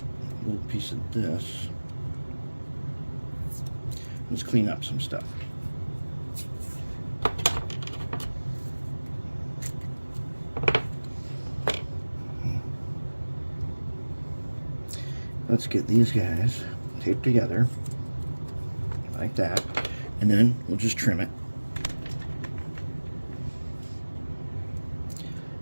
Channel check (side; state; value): both; inverted; correlation -1.00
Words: a little piece of this. Let's clean up some stuff. Let's get these guys taped together like that, and then we'll just trim it.